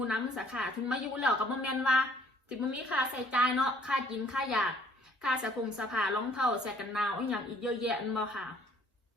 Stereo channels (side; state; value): both; normal; correlation 0.59